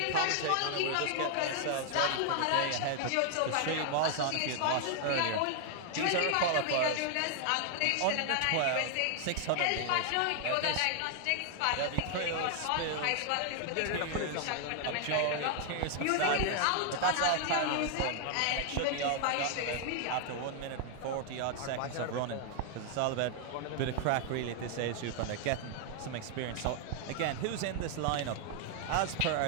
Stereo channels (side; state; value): both; different; correlation 0.00